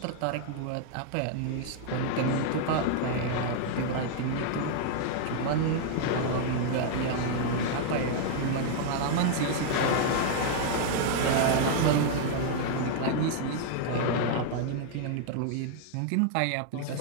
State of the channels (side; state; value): both; different; correlation 0.00